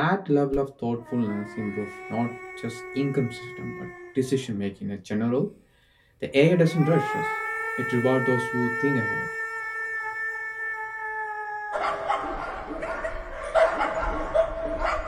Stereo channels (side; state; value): both; identical; correlation 1.00